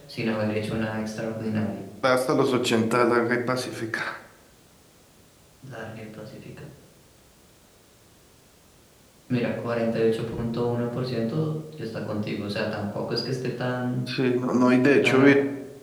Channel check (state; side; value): identical; both; correlation 1.00